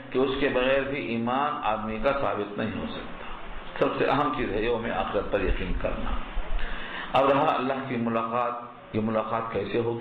کہ اس کے بغیر بھی ایمان آدمی کا ثابت نہیں ہو سکتا۔ سب سے اہم چیز ہے یوم آخرت پر یقین کرنا۔ اب رہا اللہ کی ملاقات، یہ ملاقات کیسے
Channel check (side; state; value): both; identical; correlation 1.00